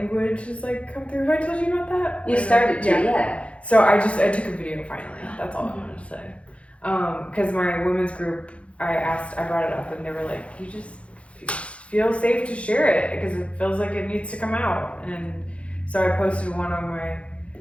has like come through. Have I told you about that? You started to, yeah. So I took a video finally. That's all I wanted to say. Because my women's group, I brought it up, and they were like, you just feel safe to share it because it feels like it needs to come out. And so I posted one on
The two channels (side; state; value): right; late; 0.062 ms